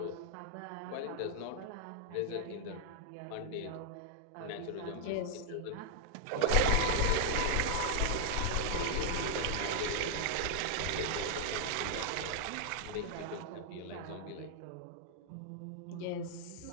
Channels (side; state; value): both; different; correlation -0.01